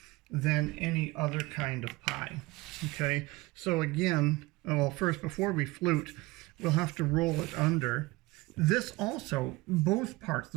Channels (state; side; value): quieter; left; 21.5 dB